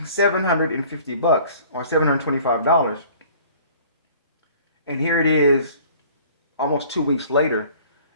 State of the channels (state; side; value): inverted; both; correlation -0.51